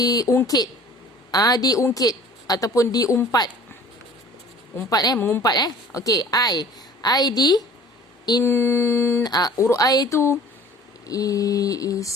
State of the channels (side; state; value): both; normal; correlation 0.47